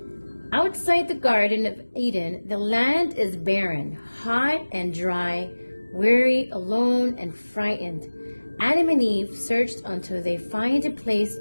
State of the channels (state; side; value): inverted; both; correlation -1.00